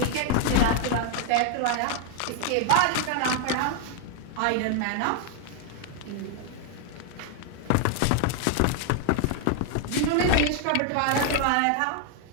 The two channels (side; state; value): both; different; correlation 0.00